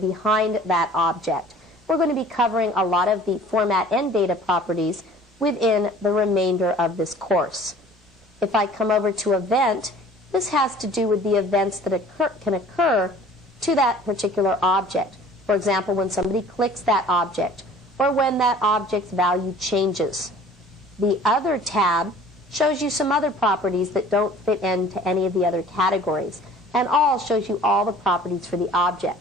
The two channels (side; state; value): both; normal; correlation 0.48